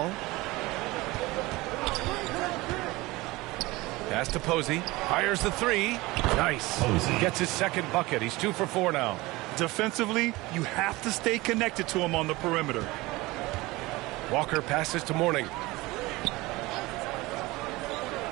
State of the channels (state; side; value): quieter; left; 21.1 dB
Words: Pass to Posey. Fires the 3. Nice. Posey gets his second bucket. He's 2 for 4 now. Defensively, you have to stay connected to him on the perimeter. Walker passes to Mourning.